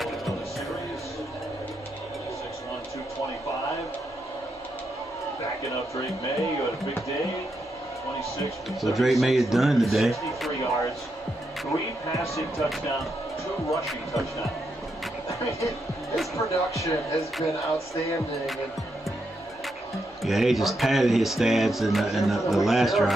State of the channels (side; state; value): both; normal; correlation 0.82